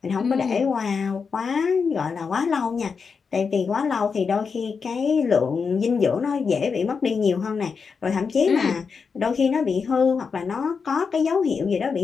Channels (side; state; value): right; quieter; 5.5 dB